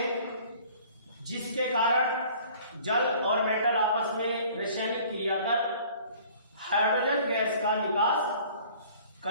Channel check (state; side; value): inverted; both; correlation -0.51